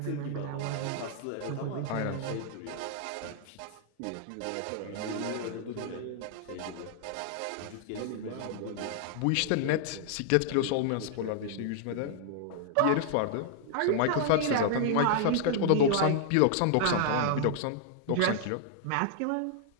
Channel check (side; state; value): both; different; correlation -0.01